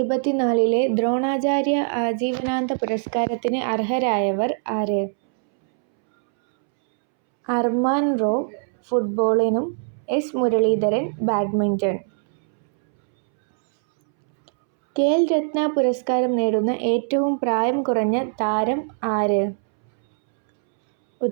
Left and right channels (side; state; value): left; silent; 64 dB below the other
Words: ദ്രോണാചാര്യ ആജീവനാന്ത പുരസ്കാരത്തിന് അർഹരായവർ ആര്? അർമാൻ റോ ഫുട്ബോളിനും എസ്. മുരളീധരൻ ബാഡ്മിന്റൺ. ഖേൽ രത്ന പുരസ്കാരം നേടുന്ന ഏറ്റവും പ്രായം കുറഞ്ഞ താരം ആര്?